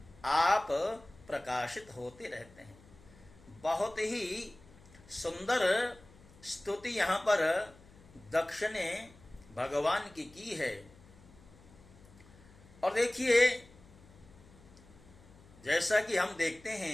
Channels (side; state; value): left; noise; hum, 24 dB below the sound